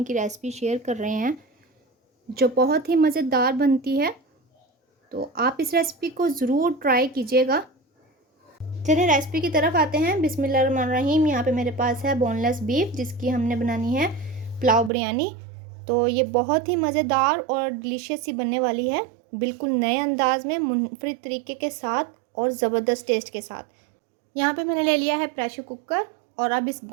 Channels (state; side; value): drops out; left; at 14.9 s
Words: की रेसिपी शेयर कर रहे हैं जो बहुत ही मज़ेदार बनती है। तो आप इस रेसिपी को ज़रूर ट्राई कीजिएगा। चलिए रेसिपी की तरफ आते हैं। बिस्मिल्लाहिर्रहमानिर्रहीम। यहाँ पे मेरे पास है बोनलेस बीफ जिसकी हमने बनानी है पुलाव बिरयानी। तो ये बहुत ही मज़ेदार और डिलीशियस सी बनने वाली है, बिल्कुल नए अंदाज में, मुनफरिद तरीके के साथ और ज़बरदस्त टेस्ट के साथ। यहाँ पे मैंने ले लिया है प्रेशर कुकर और अब इस